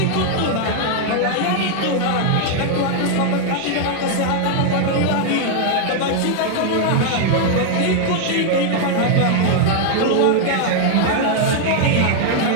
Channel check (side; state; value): both; different; correlation 0.00